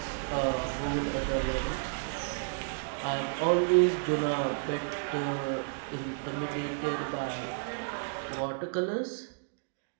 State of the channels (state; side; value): silent; left; digital silence